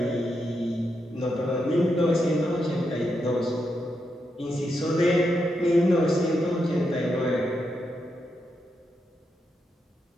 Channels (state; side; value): normal; both; correlation 0.84